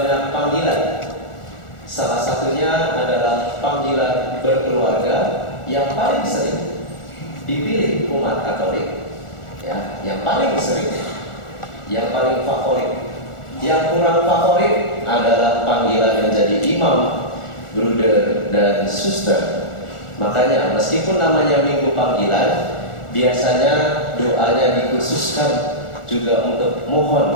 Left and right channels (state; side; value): late; right; 1.4 ms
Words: panggilan. Salah satunya adalah panggilan berkeluarga yang paling sering dipilih umat Katolik. Ya, yang paling sering, yang paling favorit. Yang kurang favorit adalah panggilan menjadi imam, bruder, dan suster. Makanya meskipun namanya Minggu Panggilan, biasanya doanya dikhususkan juga untuk